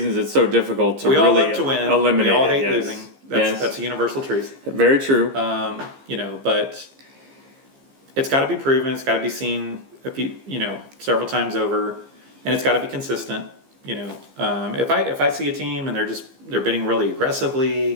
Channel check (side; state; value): left; late; 15 ms